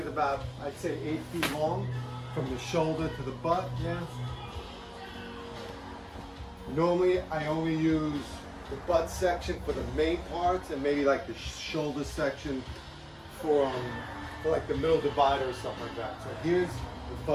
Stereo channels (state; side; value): identical; both; correlation 1.00